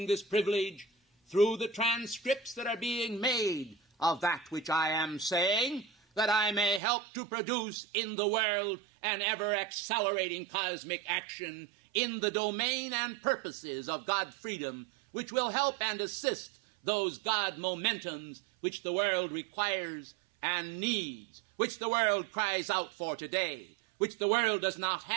this privilege through the transcripts that are being made of that which I am saying, that I may help to produce in the world an ever-accelerating cosmic action in the domain and purposes of God freedom, which will help and assist those God momentums which the world requires and needs, which the world cries out for today, which the world does not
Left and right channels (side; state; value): left; drops out; at 6.8 s